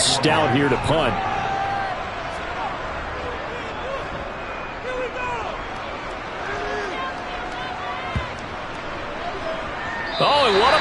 here to punt. Oh, and what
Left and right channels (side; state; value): both; identical; correlation 1.00